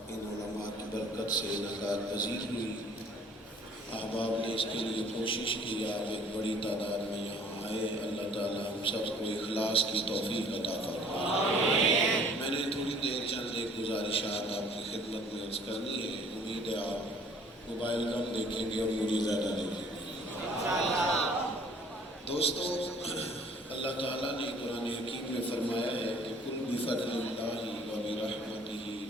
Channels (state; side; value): normal; both; correlation 0.55